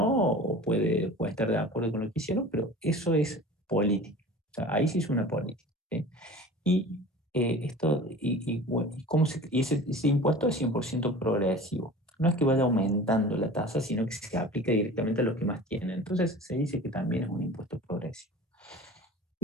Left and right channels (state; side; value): normal; both; correlation 0.39